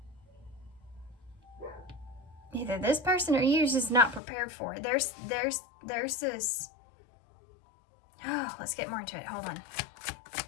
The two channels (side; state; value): right; drops out; at 4.2 s